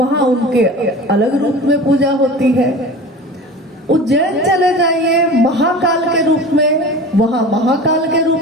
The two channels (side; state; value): both; normal; correlation 0.36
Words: उनके अलग रूप में पूजा होती है। उज्जैन चले जाइए महाकाल के रूप में, वहां महाकाल के रूप